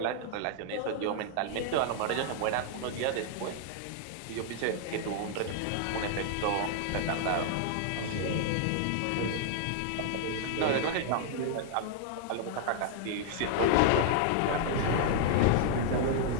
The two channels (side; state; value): both; different; correlation -0.01